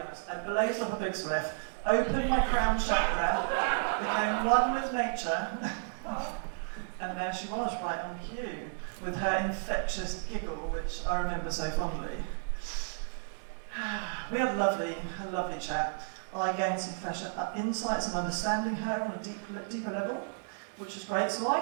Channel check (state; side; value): silent; left; 56 dB below the other